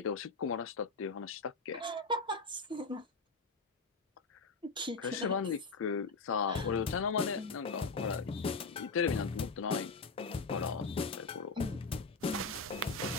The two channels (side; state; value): right; quieter; 4.1 dB